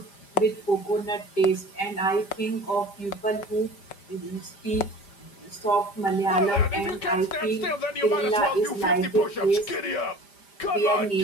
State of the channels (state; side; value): late; right; 5.0 ms